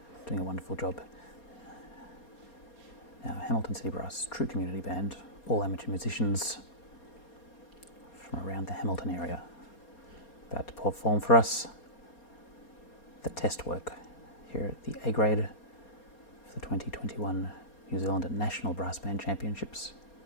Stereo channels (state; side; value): late; right; 4.3 ms